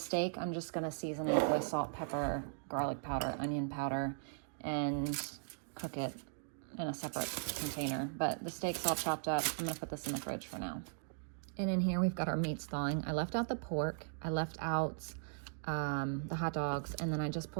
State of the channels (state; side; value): silent; left; digital silence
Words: I'm just gonna season it with salt, pepper, garlic powder, onion powder, and cook it in a separate container. But the steak's all chopped up. I'm gonna put this in the fridge for now. And in here we've got our meats thawing. I left out the pork, I left out the hot dogs, and then I just